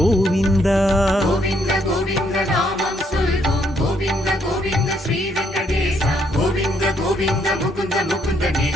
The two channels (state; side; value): normal; both; correlation 0.72